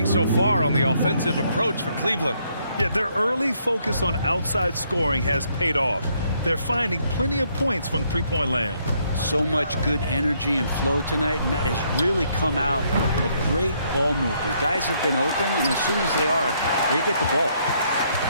so far on the offensive approach for Cleveland? Yeah, their early focus on outside scoring has paid off. They're finding plenty of points from three-point land. So much good energy and flow tonight, and that has really come out of great ball movement. Guys have been open, and as soon as they are, they get the ball.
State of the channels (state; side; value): inverted; both; correlation -0.71